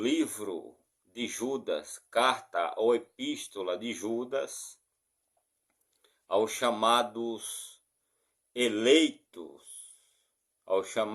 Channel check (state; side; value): identical; both; correlation 1.00